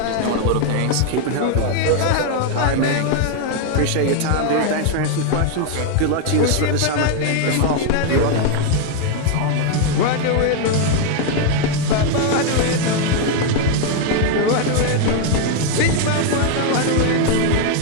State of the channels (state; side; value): different; both; correlation 0.01